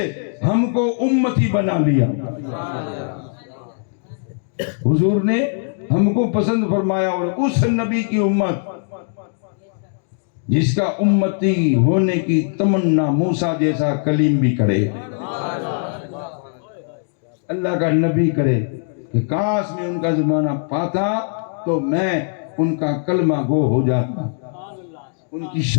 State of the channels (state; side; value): silent; right; digital silence